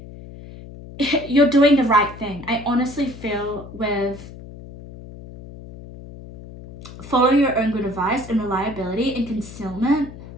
you're doing the right thing. I honestly feel with follow your own good advice and reliability and concealment,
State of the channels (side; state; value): left; noise; hum, 15 dB below the sound